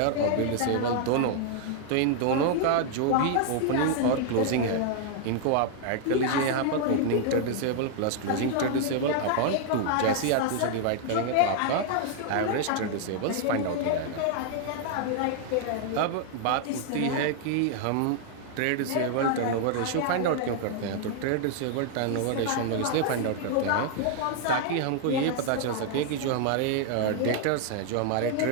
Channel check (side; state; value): both; different; correlation 0.00